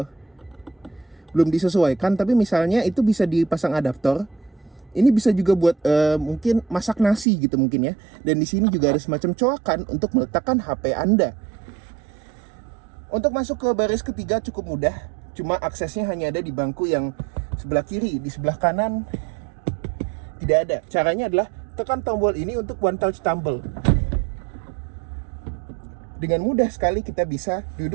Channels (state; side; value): drops out; left; at 7.2 s